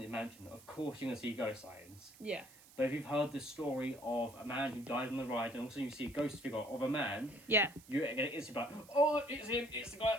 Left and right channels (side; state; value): right; noise; hiss, 22 dB below the sound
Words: mansion, of course you're going to see ghost sightings. Yeah. But if you've heard the story of a man who died on the ride, and also you see a ghost figure of a man, you're going to instantly be like, oh, it's him, it's the guy